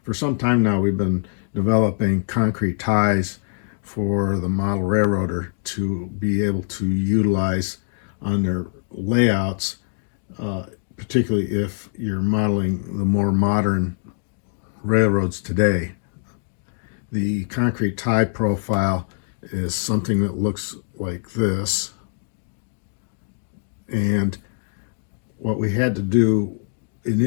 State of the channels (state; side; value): silent; right; 63 dB below the other